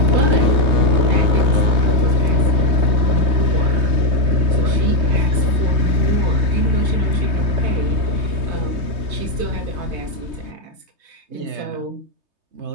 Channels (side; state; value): left; late; 3.2 ms